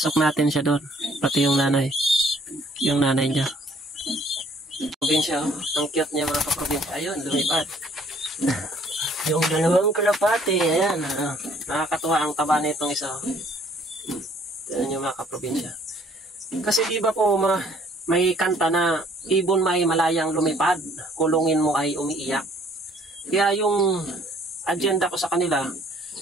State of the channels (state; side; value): normal; both; correlation 0.60